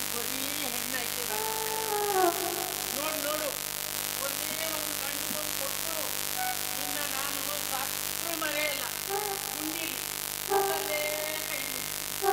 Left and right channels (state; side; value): identical; both; correlation 1.00